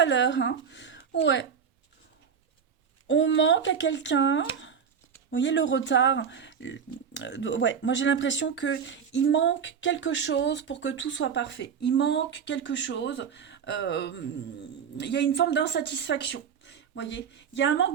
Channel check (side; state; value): left; quieter; 7.1 dB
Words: l'heure. Hein. Ouais. On manque à quelqu'un. Vous voyez le retard. Ouais, moi j'ai l'impression que il manque quelque chose pour que tout soit parfait. Il manque quelque chose. Il y a une forme d'insatisfaction. Vous voyez, il y a un